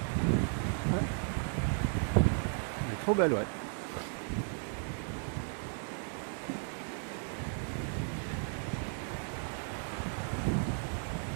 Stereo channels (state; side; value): silent; left; 54 dB below the other